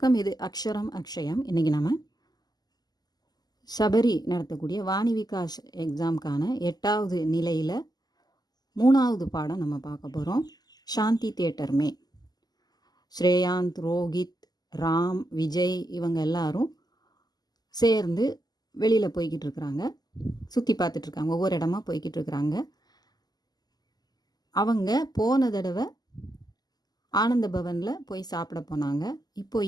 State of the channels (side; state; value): right; late; 0.20 ms